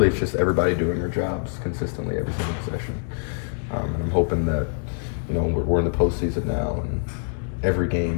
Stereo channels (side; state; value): right; silent; digital silence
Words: it's just everybody doing their jobs consistently every single possession. And I'm hoping that we're in the postseason now and every